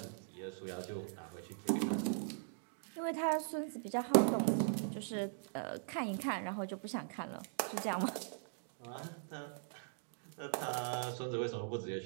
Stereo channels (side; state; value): left; silent; digital silence